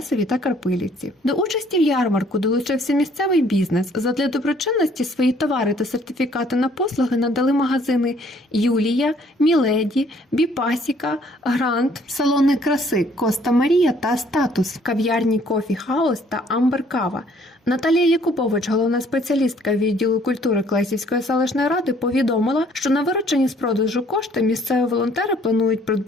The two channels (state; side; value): normal; both; correlation 0.61